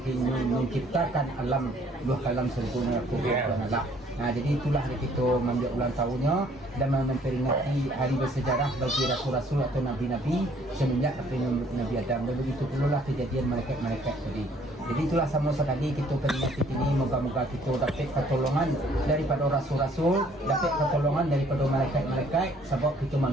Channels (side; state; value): both; normal; correlation 0.60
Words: menciptakan alam dua kalam sergona ko Tuhan Allah. Jadi itulah kita mengambil ulang tahunnya dan memperingati hari bersejarah bagi rasul-rasul atau nabi-nabi semenjak Nabi Adam dan begitu pula kejadian malaikat-malaikat tadi. Jadi itulah sama sekali kita peringati ini moga-moga kita dapat pertolongan daripada rasul-rasul, dapat pertolongan daripada malaikat-malaikat sebab kita